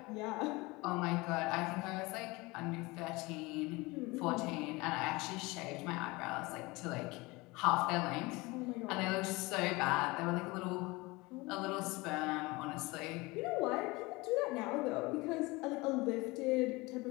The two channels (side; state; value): right; quieter; 23.4 dB